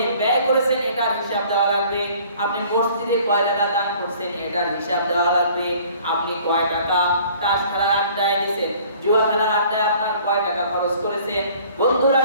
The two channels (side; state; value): both; inverted; correlation -0.54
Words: ব্যয় করেছেন এটার হিসাব দেওয়া লাগবে। আপনি মসজিদে কয় টাকা দান করছেন এটার হিসাব দেওয়া লাগবে। আপনি কয় টাকা তাস খেলার আড্ডায় দিয়েছেন, জুয়া খেলার আড্ডায় আপনার কয় টাকা খরচ করেছেন, বন্ধুর